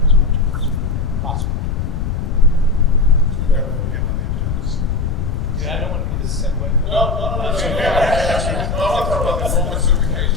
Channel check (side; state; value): left; noise; rumble, 2 dB below the sound